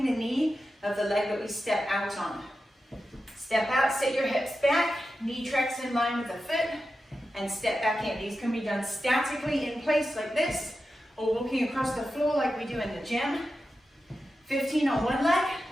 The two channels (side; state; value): both; normal; correlation 0.91